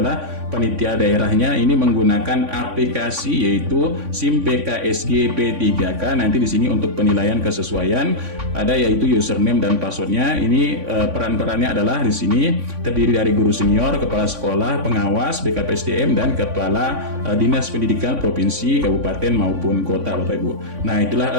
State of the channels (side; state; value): left; late; 3.5 ms